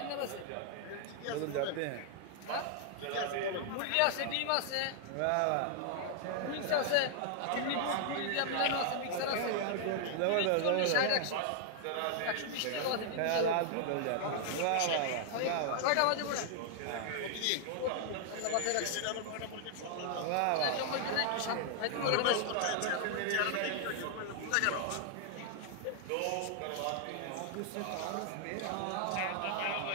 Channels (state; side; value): different; both; correlation 0.00